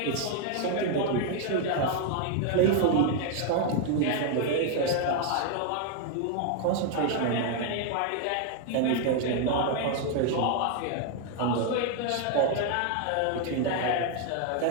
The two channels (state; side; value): different; both; correlation 0.00